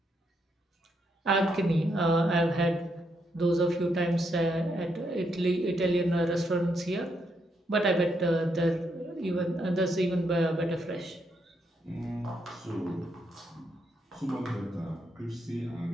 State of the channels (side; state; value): both; normal; correlation 0.78